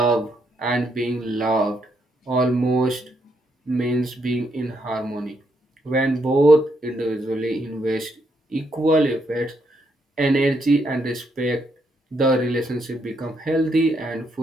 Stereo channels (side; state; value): both; normal; correlation 0.76